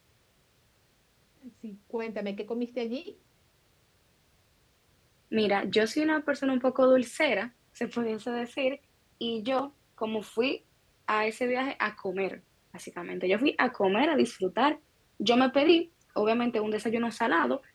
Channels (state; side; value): identical; both; correlation 1.00